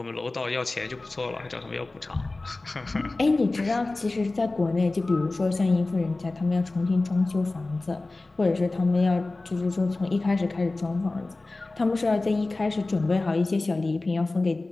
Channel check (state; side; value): quieter; right; 3.2 dB